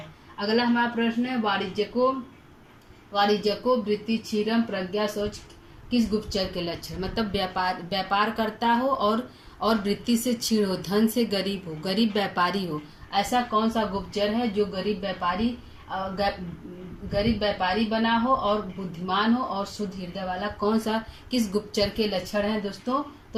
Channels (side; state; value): both; identical; correlation 1.00